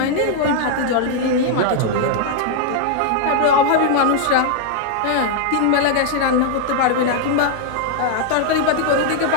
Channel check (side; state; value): both; different; correlation 0.00